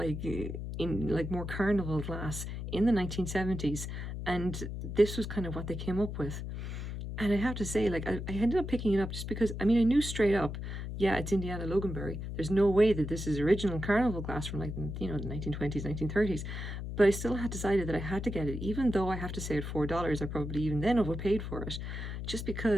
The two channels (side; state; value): left; noise; hum, 6 dB below the sound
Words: carnival glass in the 1970s, and this was kind of what they came up with. And I have to say, I ended up picking it up just because, I knew straight up, yeah, it's Indiana Loganberry. There's no way that this is original carnival glass from the 1920s, 1930s. But I still had decided that I had to get it, even though I have to say at $4, I probably even then overpaid for it, just